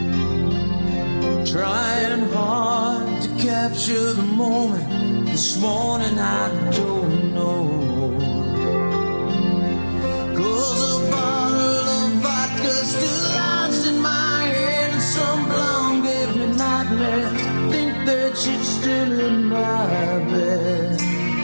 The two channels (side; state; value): both; inverted; correlation -1.00